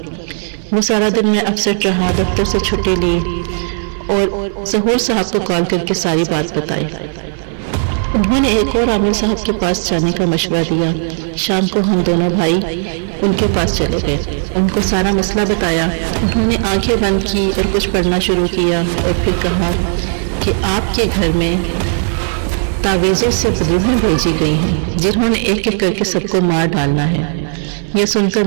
وہ سارا دن میں اپسیٹ رہا، دفتر سے چھٹی لی اور ظہور صاحب کو کال کر کے ساری بات بتائی۔ انہوں نے ایک اور عامر صاحب کے پاس جانے کا مشورہ دیا۔ شام کو ہم دونوں بھائی ان کے پاس چلے گئے، ان کو سارا مسئلہ بتایا۔ انہوں نے آنکھیں بند کی اور کچھ پڑھنا شروع کیا اور پھر کہا کہ آپ کے گھر میں تعویذوں سے بدوحیں بھیجی گئی ہیں جنہوں نے ایک ایک کر کے سب کو مار ڈالنا ہے۔ یہ سن کر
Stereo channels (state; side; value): silent; left; 56 dB below the other